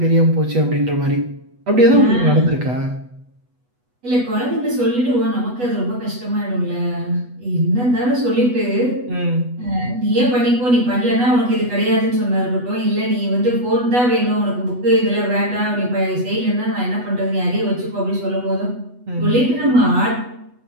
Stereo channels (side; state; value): left; late; 8.1 ms